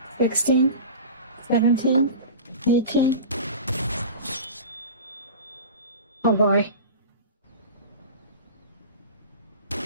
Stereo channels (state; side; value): inverted; both; correlation -0.33